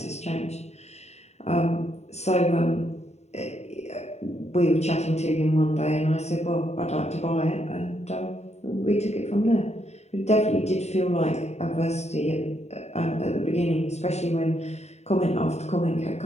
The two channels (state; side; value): late; right; 0.32 ms